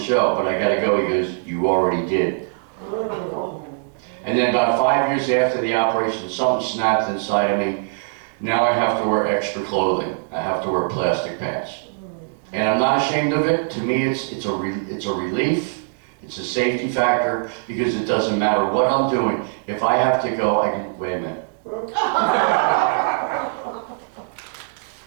show, but I gotta go. He goes, you already did. And then about 5 years after the operation, something snapped inside of me. Now I have to wear extra clothing. I have to wear plastic pants. And I'm not ashamed of it. To me, it's a relief. It's a safety factor because it doesn't matter what I'm doing. If I have to go, I can, wait a minute.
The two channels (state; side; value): silent; left; digital silence